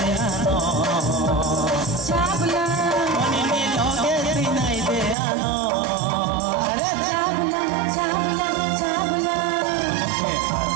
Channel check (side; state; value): left; drops out; at 5.2 s